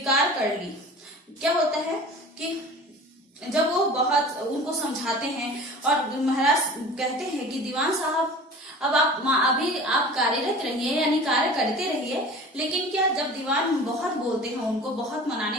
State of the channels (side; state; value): both; normal; correlation 0.40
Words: कर ली। क्या होता है कि जब वो बहुत उनको समझाते हैं और महाराज कहते हैं कि दीवान साहब अब अभी आप कार्यरत रहिए यानी कार्य करते रहिए, लेकिन क्या जब दीवान बहुत बोलते हैं, उनको बहुत